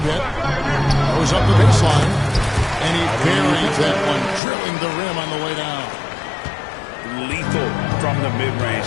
bit. Goes up the baseline. And he buries that one, drilling the rim on the way down. Lethal from the mid-range.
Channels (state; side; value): drops out; right; at 4.4 s